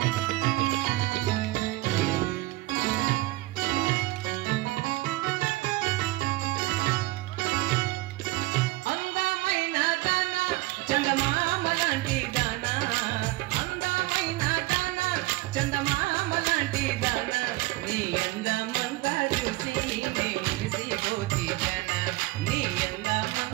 చందమామ లాంటి దానా అందమైన దానా చందమామ లాంటి దానా నీ అందమంతా చూసి నే మురిసిపోతి జనా నీ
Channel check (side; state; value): left; quieter; 19.7 dB